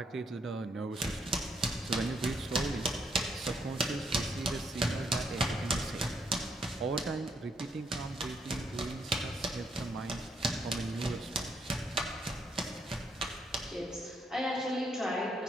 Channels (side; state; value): both; normal; correlation 0.74